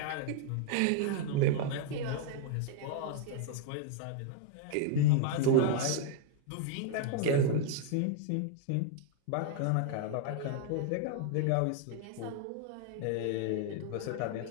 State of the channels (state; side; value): different; both; correlation 0.00